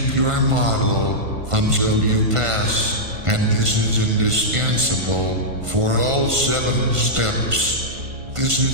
your model until you pass, and this is indispensable for all 7 steps. This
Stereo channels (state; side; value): late; left; 1.5 ms